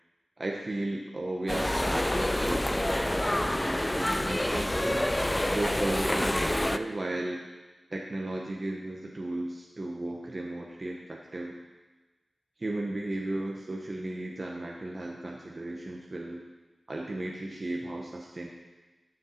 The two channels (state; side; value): normal; both; correlation 0.98